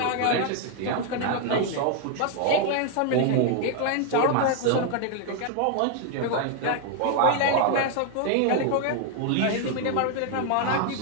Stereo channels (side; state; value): both; different; correlation 0.00